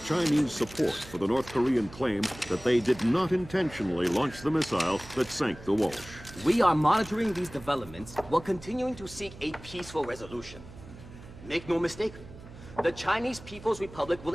Chinese support for the North Korean claim that they did not intentionally launch the missile that sank the Walsh. We are monitoring these developments while continuing to seek a peaceful resolution. Make no mistake, the Chinese People's Republic will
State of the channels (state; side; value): noise; right; hum, 17 dB below the sound